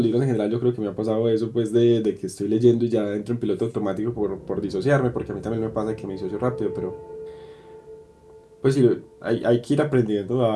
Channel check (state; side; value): identical; both; correlation 1.00